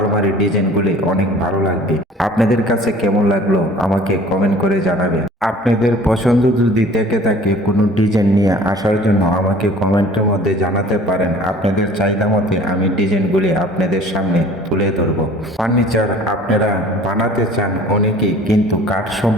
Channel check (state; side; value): normal; both; correlation 0.48